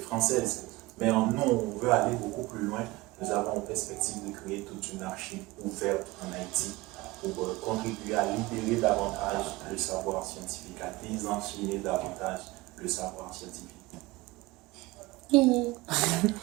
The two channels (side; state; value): left; quieter; 21.0 dB